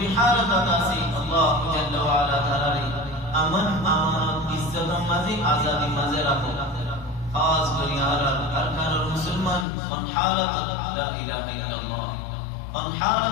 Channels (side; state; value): right; drops out; at 9.7 s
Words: হালত আছে আল্লাহ জাল্লা ওয়া আলা তাআলা আমন আমানত ইজ্জত মাঝে আজাদি মাঝে রাখো খাস করে আরকান মুসলমান কোন হালত লা ইলাহা ইল্লাল্লাহ কোন